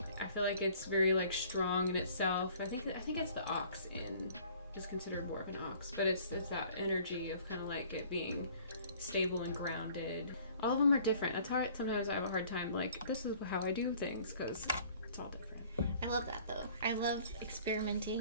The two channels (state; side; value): inverted; both; correlation -0.54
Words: I feel like it's very like strong in itself. I think it's the ox is considered more of an ox, but it's that energy of kind of like it being stable and grounded. All of them are different. That's hard. Sometimes I have a hard time like, this is how I do things, because it's all different. I love that though. I love